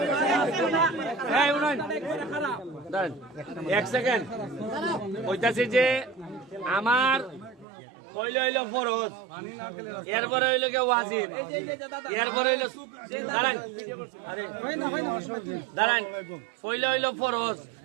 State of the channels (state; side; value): drops out; left; at 7.7 s